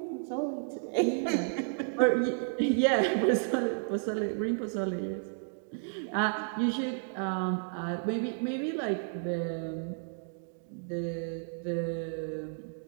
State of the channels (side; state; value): left; silent; digital silence